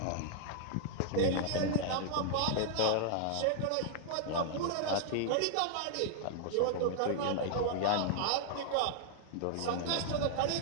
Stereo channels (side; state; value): both; different; correlation 0.00